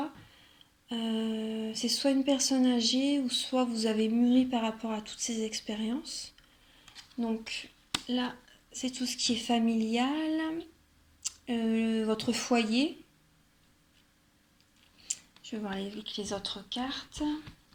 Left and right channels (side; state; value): both; identical; correlation 1.00